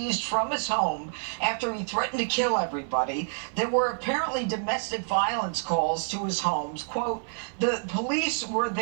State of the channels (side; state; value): left; silent; 58 dB below the other